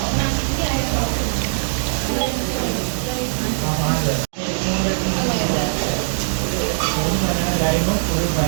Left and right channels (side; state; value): left; silent; digital silence